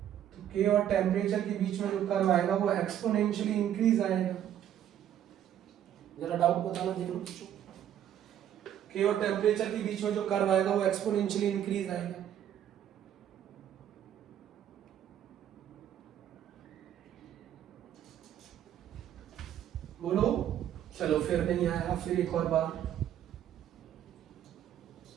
के और टेम्परेचर के बीच में जो कर्व आएगा वो एक्सपोनेंशियली इंक्रीज आएगा। जरा डाउट बताना देख लो। के और टेम्परेचर के बीच में जो कर्व आएगा वो एक्सपोनेंशियली इंक्रीज आएगा। बोलो, चलो फिर नहीं आया, फिर एक और बार।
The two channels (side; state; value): left; quieter; 10.6 dB